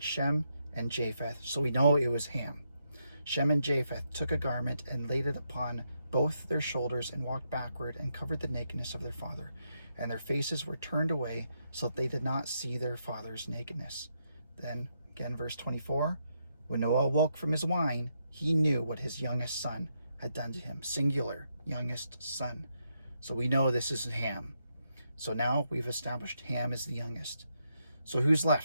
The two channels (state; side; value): inverted; both; correlation -0.80